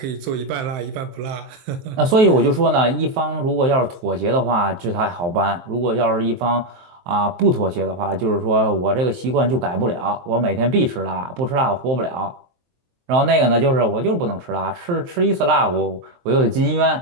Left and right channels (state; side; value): late; left; 23 ms